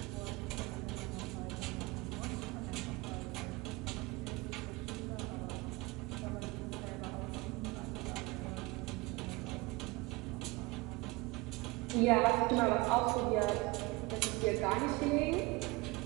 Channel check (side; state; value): left; quieter; 23.5 dB